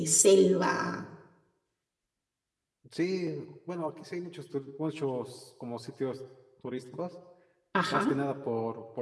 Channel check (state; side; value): identical; both; correlation 1.00